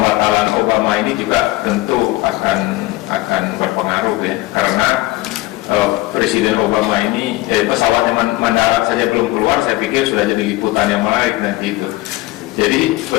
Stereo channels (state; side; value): quieter; right; 19.1 dB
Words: Obama ini juga tentu akan berpengaruh ya, karena Presiden Obama ini pesawatnya mendarat saja belum keluar, saya pikir sudah jadi liputan yang menarik nanti itu. Jadi